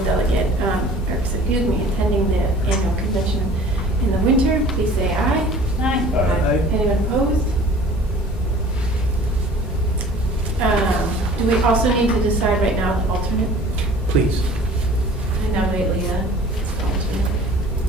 delegate, attending the annual convention in the winter, please say aye. Aye. Anyone opposed? Do we also need to decide right now the alternate? Please. I nominate Leah as the alternate.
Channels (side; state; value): both; normal; correlation 0.47